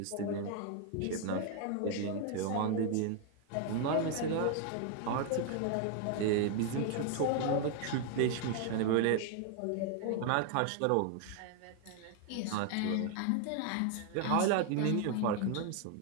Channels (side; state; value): both; different; correlation 0.00